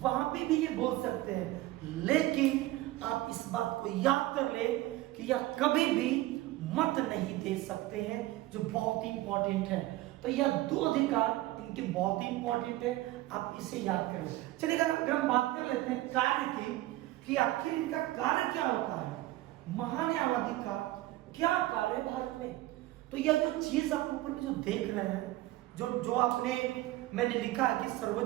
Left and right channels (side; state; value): left; quieter; 17.0 dB